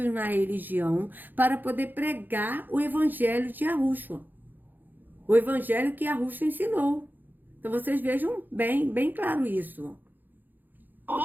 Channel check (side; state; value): left; late; 0.088 ms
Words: na religião, para poder pregar o evangelho de Yahushua. O evangelho que Yahushua ensinou. Então vocês vejam bem claro isso.